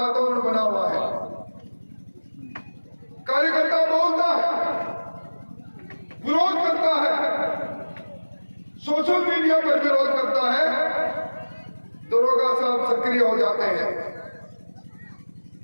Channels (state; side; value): inverted; both; correlation -1.00